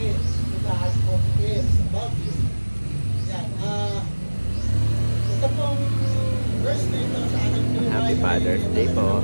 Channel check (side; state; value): both; inverted; correlation -1.00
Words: Happy Father's Day po.